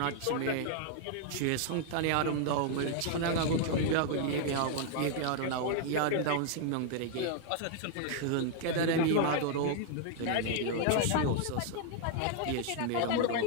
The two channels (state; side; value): different; both; correlation 0.00